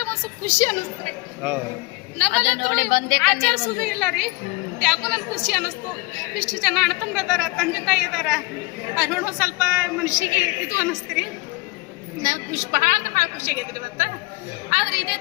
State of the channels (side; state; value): right; quieter; 23.0 dB